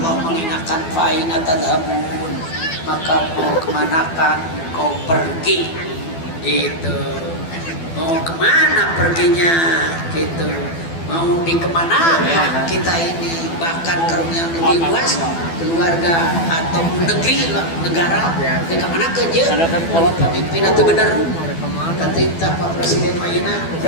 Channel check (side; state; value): right; late; 12 ms